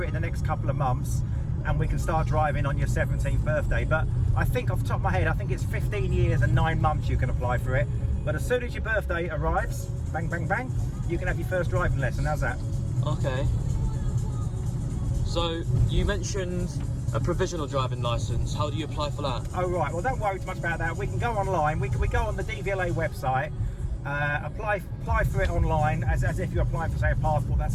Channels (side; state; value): both; identical; correlation 1.00